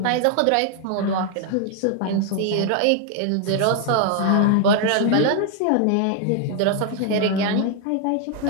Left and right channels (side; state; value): both; different; correlation 0.00